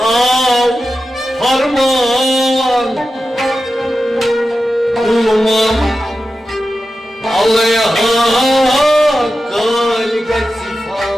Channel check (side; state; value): both; normal; correlation 0.92